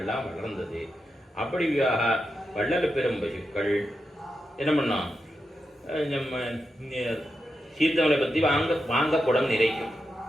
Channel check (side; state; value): both; normal; correlation 0.88